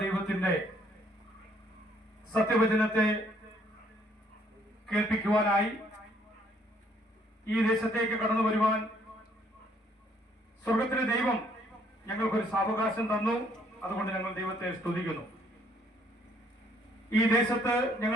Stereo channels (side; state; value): both; normal; correlation 0.66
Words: ദൈവത്തിന്റെ സത്യവചനത്തെ കേൾപ്പിക്കുവാനായി ഈ ദേശത്തേക്ക് കടന്നു വരുവാൻ സ്വർഗത്തിലെ ദൈവം ഞങ്ങൾക്കൊരു സാവകാശം തന്നു. അതുകൊണ്ട് ഞങ്ങൾ ദൈവത്തെ സ്തുതിക്കുന്നു. ഈ ദേശത്ത്